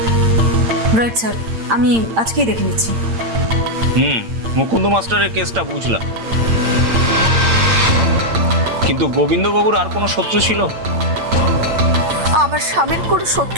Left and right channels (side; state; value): left; late; 8.8 ms